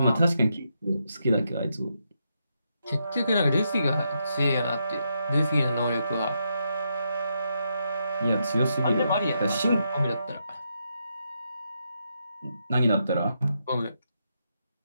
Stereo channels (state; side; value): inverted; both; correlation -0.81